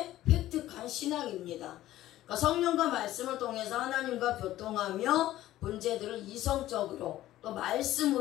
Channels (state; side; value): quieter; right; 14.5 dB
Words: 획득한 신앙입니다. 그러니까 성령과 말씀을 통해서 하나님과 교통하며 문제들을 이성적으로 또